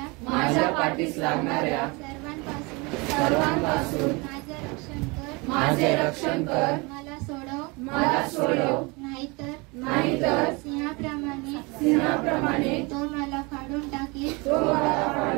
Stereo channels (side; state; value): left; quieter; 27.3 dB